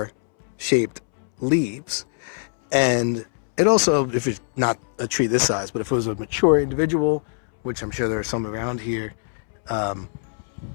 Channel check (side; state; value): right; silent; 63 dB below the other